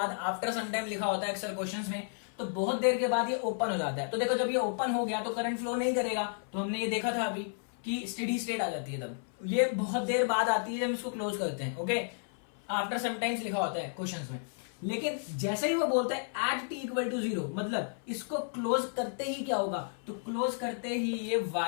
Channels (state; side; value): silent; right; 56 dB below the other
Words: आफ्टर सम टाइम लिखा होता है अक्सर क्वेश्चंस में, तो बहुत देर के बाद ये ओपन हो जाता है। तो देखो, जब ये ओपन हो गया तो करंट फ्लो नहीं करेगा, तो हमने ये देखा था अभी कि स्टेडी स्टेट आ जाती है। तब ये बहुत देर बाद आती है जब इसको क्लोज करते हैं। ओके, आफ्टर सम टाइम्स लिखा होता है क्वेश्चंस में। लेकिन जैसे ही वो बोलते हैं एट t इक्वल टू 0, मतलब इसको क्लोज करते ही क्या होगा, तो क्लोज करते ही ये